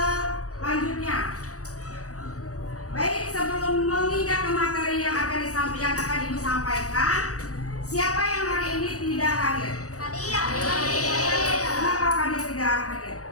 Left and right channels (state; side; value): late; right; 0.66 ms